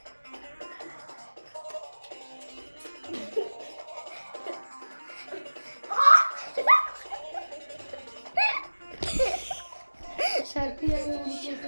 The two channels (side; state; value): both; inverted; correlation -1.00